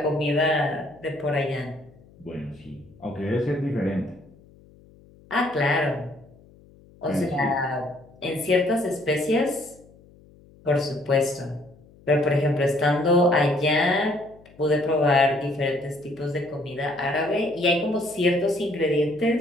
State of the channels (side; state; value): left; noise; hum, 26 dB below the sound